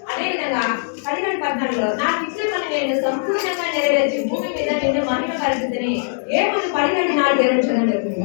అదే విధంగా 11:14 నాకు ఇచ్చిన పని నేను సంపూర్ణంగా నెరవేర్చి భూమి మీద నిన్ను మహిమ పరిస్థితిని. ఏమని 12:4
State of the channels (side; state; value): right; silent; digital silence